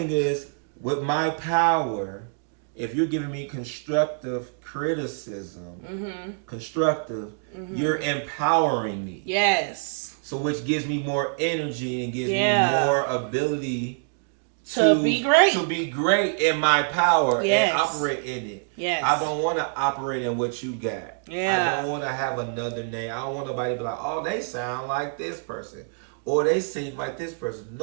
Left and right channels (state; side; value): silent; left; digital silence